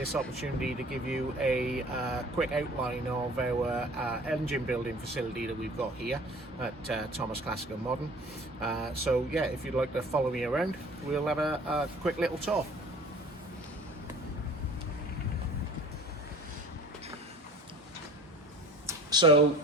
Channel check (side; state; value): both; normal; correlation 0.46